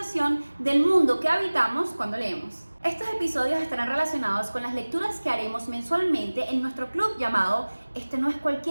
del mundo que habitamos cuando leemos. Estos episodios estarán relacionados con las lecturas que haremos mensualmente en nuestro club llamado Este no es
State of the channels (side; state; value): both; inverted; correlation -1.00